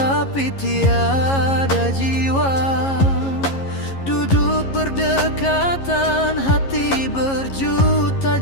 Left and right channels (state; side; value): late; right; 11 ms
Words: tiada jiwa. Duduk berdekatan, hati berjuta